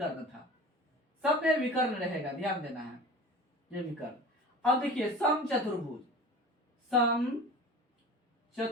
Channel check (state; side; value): normal; both; correlation 0.38